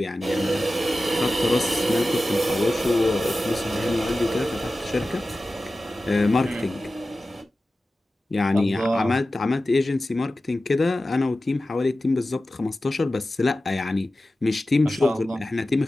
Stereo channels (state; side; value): normal; both; correlation 0.94